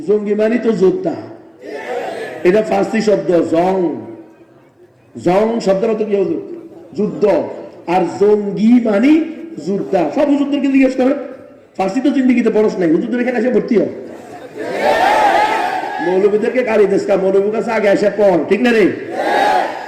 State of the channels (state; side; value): identical; both; correlation 1.00